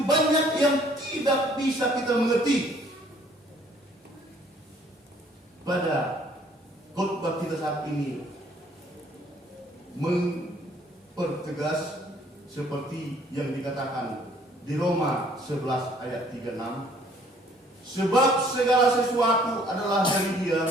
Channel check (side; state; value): both; normal; correlation 0.60